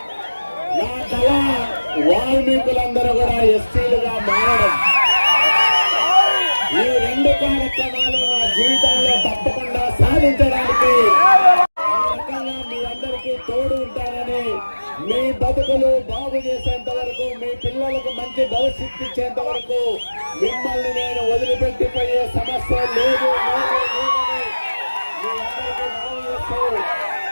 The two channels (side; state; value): both; inverted; correlation -1.00